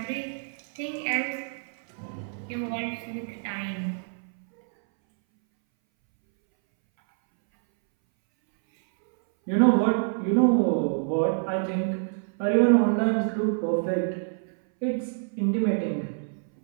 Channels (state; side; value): silent; left; 61 dB below the other